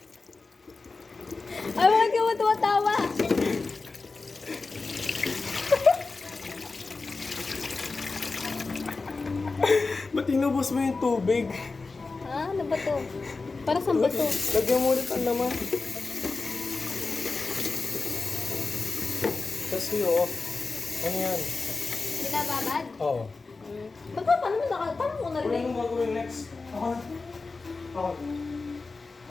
Ay, bakit ka mo tumatawa? Ba't inubos mo yung tubig? Ha? Ano ba to? Para saan ba to? Lagyan mo ulit ang laman. Kasi oh. Ano yan? Binababad? Oo. Ba't ba? Paano mo paano mo Ano narinig? yung gagawin next? Ako na. Ako.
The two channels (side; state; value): right; quieter; 3.9 dB